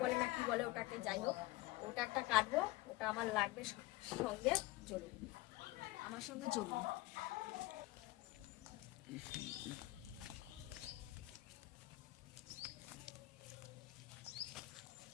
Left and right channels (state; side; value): quieter; right; 18.5 dB